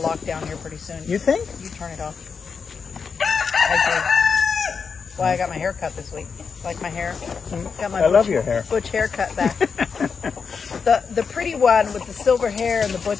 lockdown here pretty soon. You think? You turn it off. I do. Why I got my hair cut this week. Like my hair. Got my I love your hair. butch haircut back. the pretty one with the silver hair and the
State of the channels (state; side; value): quieter; right; 5.7 dB